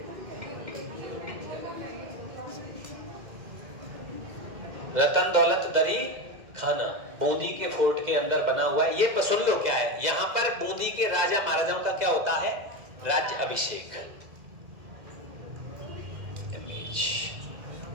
रतन दौलत दरी खाना बूंदी के फोर्ट के अंदर बना हुआ है। ये सुन लो क्या है, यहां पर बूंदी के राजा महाराजाओं का क्या होता है? राज्य अभिषेक। इमेज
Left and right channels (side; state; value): left; late; 2.0 ms